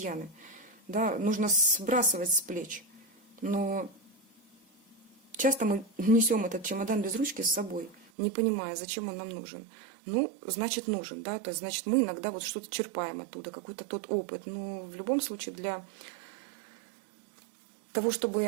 да, нужно сбрасывать с плеч. Но часто мы несем этот чемодан без ручки с собой, не понимая, зачем он нам нужен. Ну, значит, нужен, да, то есть, значит, мы иногда вот что-то черпаем оттуда, какой-то тот опыт. Но в любом случае для того,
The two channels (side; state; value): left; drops out; at 8.1 s